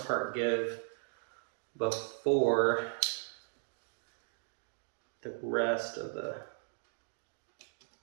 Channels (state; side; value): silent; left; digital silence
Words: part give before the rest of the...